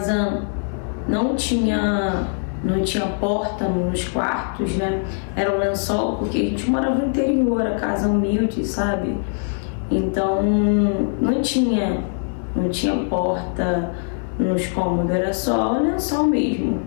não tinha porta nos quartos, né? Era um lençol, porque a gente morava no interior, a casa humilde, sabe? Então não tinha porta nos cômodos, era só o lençol mesmo.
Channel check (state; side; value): silent; right; 62 dB below the other